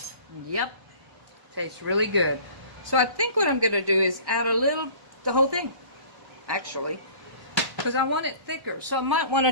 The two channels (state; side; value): late; left; 1.1 ms